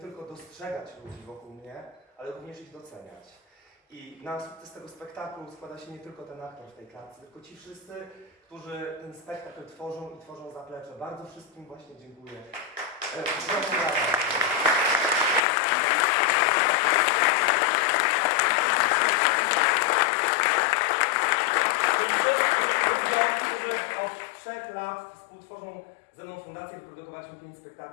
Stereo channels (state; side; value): drops out; right; at 15.4 s